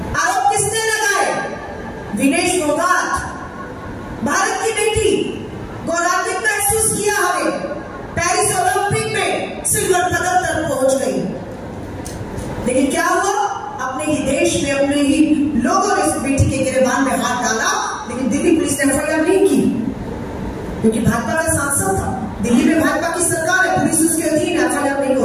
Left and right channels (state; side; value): identical; both; correlation 1.00